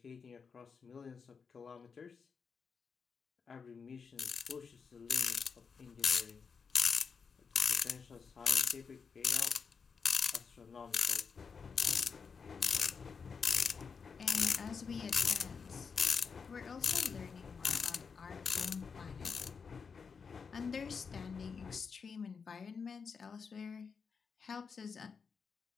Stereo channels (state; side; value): quieter; right; 5.7 dB